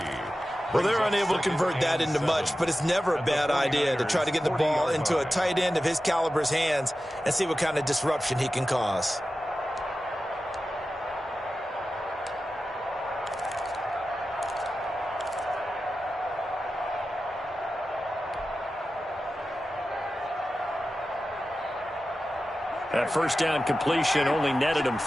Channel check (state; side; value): normal; both; correlation 0.93